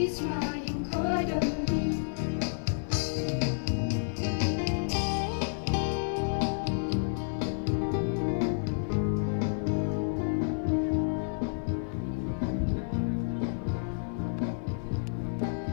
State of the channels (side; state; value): right; silent; 58 dB below the other